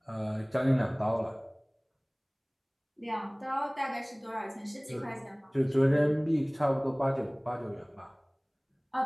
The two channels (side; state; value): both; identical; correlation 1.00